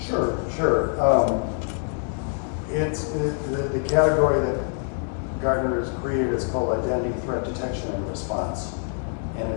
Sure. The category that Gartner has created is called Identity Threat Detection and Response. And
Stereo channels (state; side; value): silent; right; 56 dB below the other